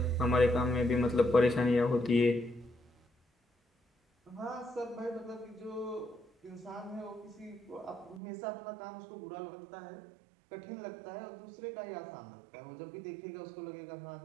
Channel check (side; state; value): left; drops out; at 8.2 s